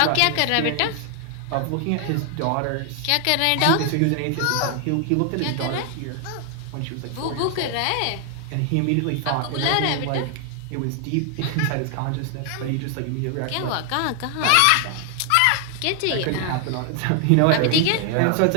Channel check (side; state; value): both; different; correlation 0.00